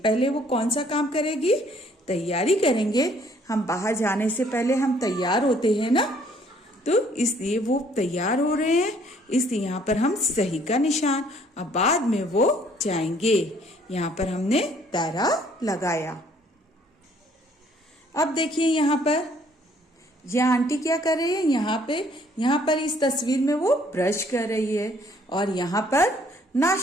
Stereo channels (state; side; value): normal; both; correlation 0.62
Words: वो कौन सा काम करेगी, तैयारी करेंगे। हम बाहर जाने से पहले हम तैयार होते हैं ना, तो इसलिए वो तैयार हो रहे हैं, इसलिए यहाँ पर हम सही का निशान। अब बाद में वो जाएंगे, यहाँ पर हमने दायरा लगाया। अब देखिए यहाँ पर यह आंटी क्या कर रही है, यहाँ पर इस तस्वीर में वो ब्रश कर रही है और यहाँ पर